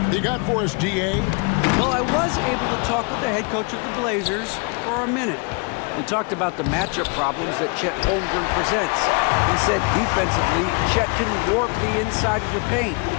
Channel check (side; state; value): right; quieter; 33.9 dB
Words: You got for us, DA? Well, I was able to talk with the head coach of the Blazers for a minute. We talked about the matchup problems that Chet Holmgren presents. He said defensively, Chet can warp the inside of the paint.